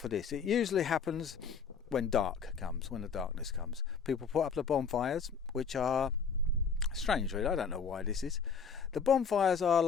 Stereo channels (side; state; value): right; quieter; 6.0 dB